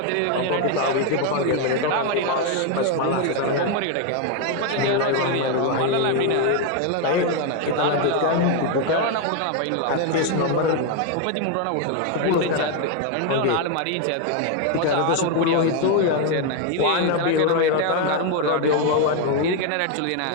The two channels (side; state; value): both; different; correlation 0.01